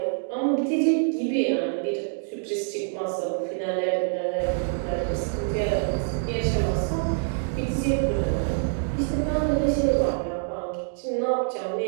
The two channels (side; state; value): left; silent; digital silence